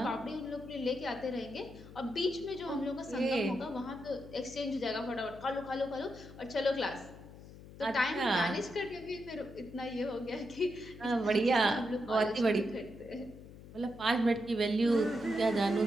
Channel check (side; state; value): left; noise; hum, 17 dB below the sound